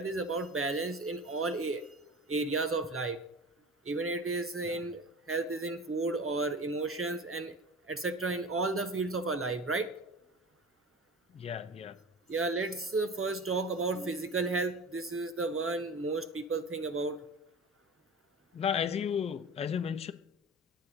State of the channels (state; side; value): normal; both; correlation 0.34